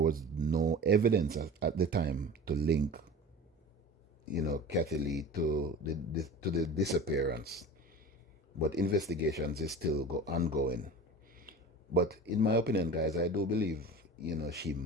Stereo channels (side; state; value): both; normal; correlation 0.36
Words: no evidence at the time to link, you know, Kathy Lee to the disappearance. But investigations is still ongoing. But in my opinion, guys, I do believe, you know, she